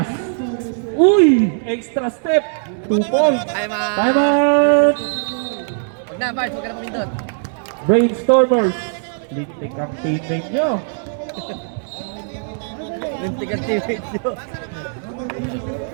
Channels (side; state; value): left; silent; digital silence